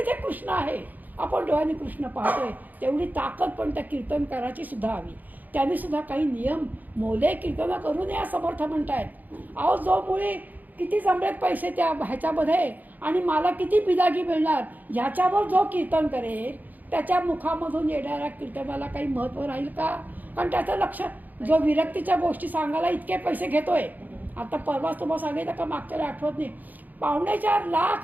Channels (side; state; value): left; late; 0.083 ms